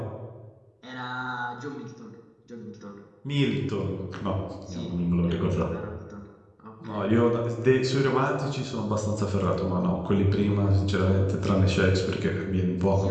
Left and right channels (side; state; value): both; identical; correlation 1.00